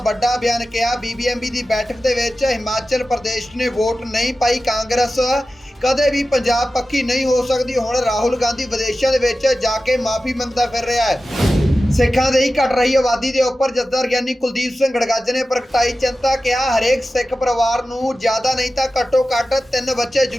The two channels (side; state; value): both; normal; correlation 0.94